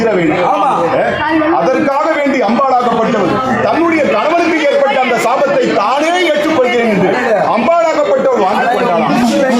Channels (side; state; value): both; identical; correlation 1.00